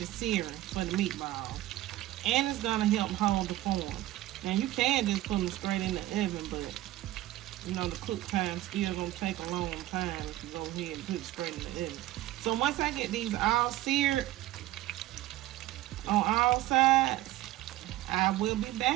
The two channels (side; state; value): left; quieter; 15.5 dB